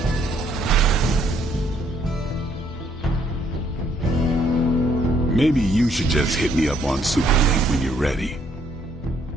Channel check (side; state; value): both; normal; correlation 0.68